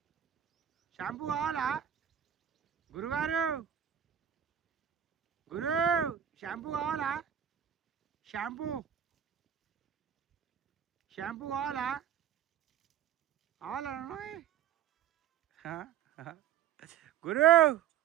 షాంపూ కావాలా గురుగారు గురు షాంపూ కావాలా షాంపూ కావాలా గురు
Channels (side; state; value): left; quieter; 9.5 dB